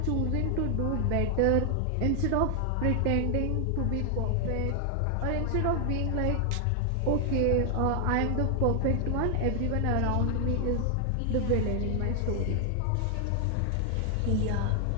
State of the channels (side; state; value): both; different; correlation 0.00